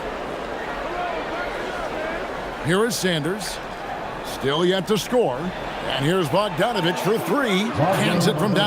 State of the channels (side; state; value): both; identical; correlation 1.00